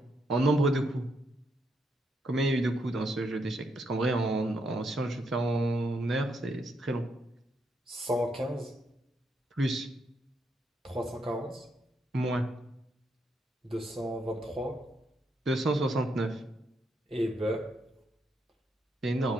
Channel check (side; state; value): both; normal; correlation 0.78